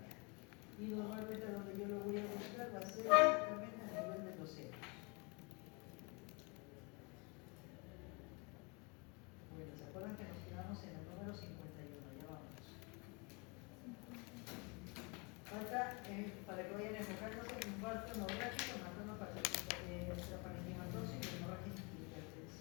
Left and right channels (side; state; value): right; quieter; 30.9 dB